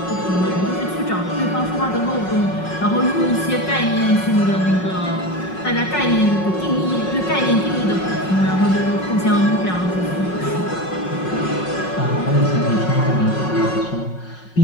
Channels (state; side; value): late; right; 5.5 ms